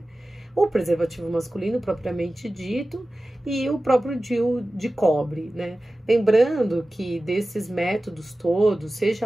O preservativo masculino propriamente dito e o próprio DIU de cobre, né? Lembrando que desses métodos todos,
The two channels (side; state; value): both; normal; correlation 0.95